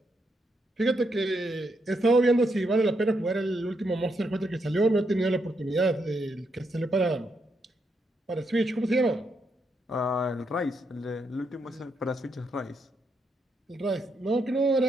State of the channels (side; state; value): both; normal; correlation 0.80